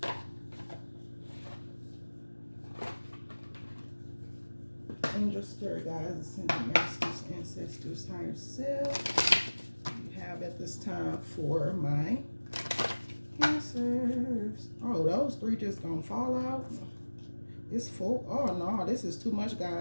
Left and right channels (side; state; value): both; inverted; correlation -1.00